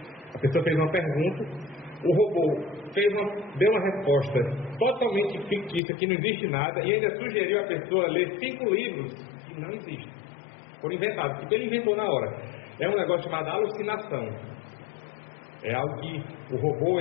a pessoa fez uma pergunta, o robô deu uma resposta totalmente fictícia, que não existe nada, e ainda sugeriu a pessoa ler 5 livros que não existem. Foram inventados, porque ele inventou na hora. É um negócio chamado alucinação. É algo que o robô,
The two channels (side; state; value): right; drops out; at 5.8 s